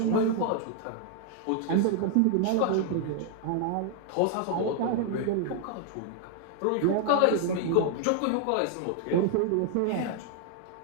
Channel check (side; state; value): both; different; correlation 0.00